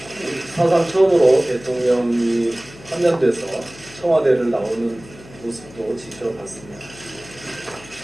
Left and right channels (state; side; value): noise; left; hum, 20 dB below the sound